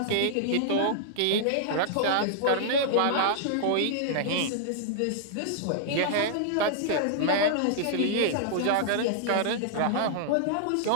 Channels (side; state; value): both; different; correlation -0.01